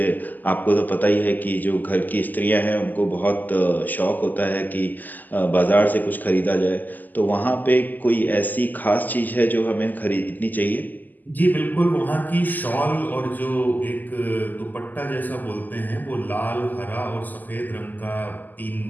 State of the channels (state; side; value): late; right; 0.084 ms